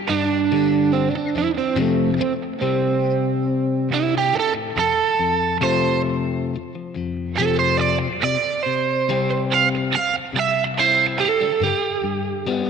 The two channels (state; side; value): normal; both; correlation 0.63